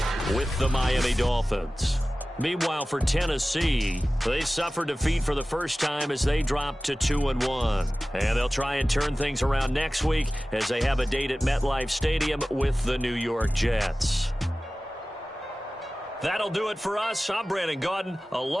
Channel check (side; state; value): both; normal; correlation 0.96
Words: with the Miami Dolphins. Meanwhile, for Tennessee, they suffered defeat for the first time as they dropped to 2-1. And they'll try and turn things around next week as they have a date at MetLife Stadium with the New York Jets. That'll do it for us. I'm Brandon Gaudin